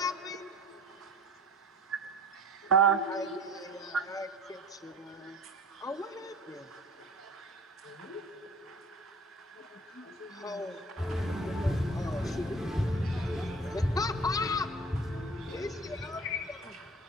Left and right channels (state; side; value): normal; both; correlation 0.45